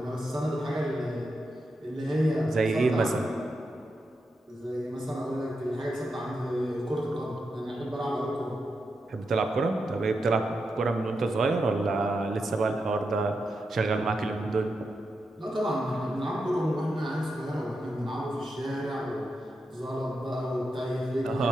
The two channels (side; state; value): both; normal; correlation 0.87